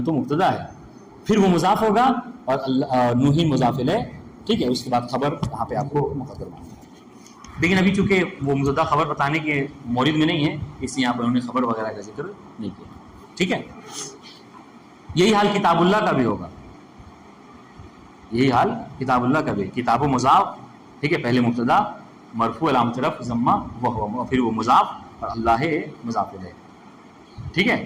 مبتدا ہے، پھر وہ مضاف ہوگا اور نوح مضاف الیہ. ٹھیک ہے، اس کے بعد خبر وہاں پہ آپ کو مقدر ماننا ہے. لیکن ابھی چونکہ وہ مبتدا خبر بتانے کے مورد میں نہیں ہے، اس لیے یہاں پر انہوں نے خبر وغیرہ کا ذکر نہیں کیا. ٹھیک ہے، یہی حال کتاب اللہ کا بھی ہوگا. یہی حال کتاب اللہ کا بھی، کتاب و مضاف. ٹھیک ہے، پہلے مبتدا مرفوع علامت رفع ضمہ وہ، پھر وہ مضاف اور اللہ مضاف الیہ. ٹھیک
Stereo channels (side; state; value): both; identical; correlation 1.00